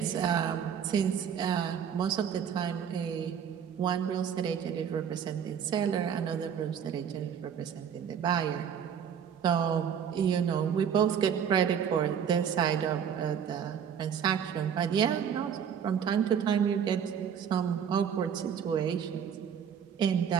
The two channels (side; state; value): left; quieter; 8.0 dB